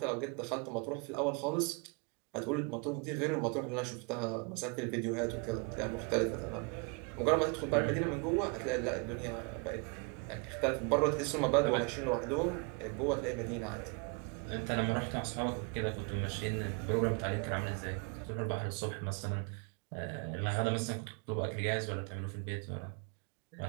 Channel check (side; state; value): left; quieter; 32.3 dB